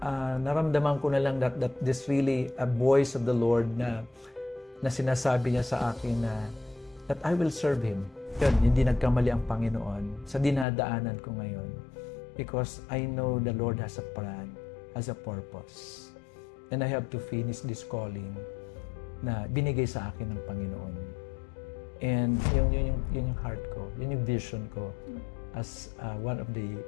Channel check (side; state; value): right; drops out; at 10.7 s